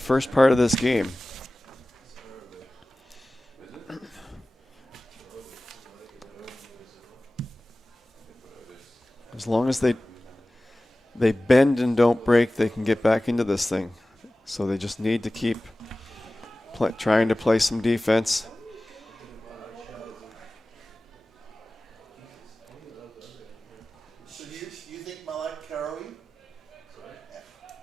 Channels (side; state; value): both; normal; correlation 0.97